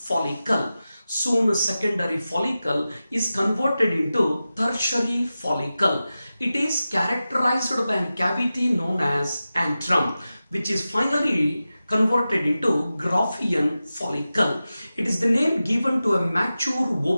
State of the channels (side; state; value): both; inverted; correlation -0.94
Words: Soon secondary follicle is converted into tertiary follicle. It is characterized by a cavity known as antrum, which is finally converted into Graafian follicle. It is the name given to a mature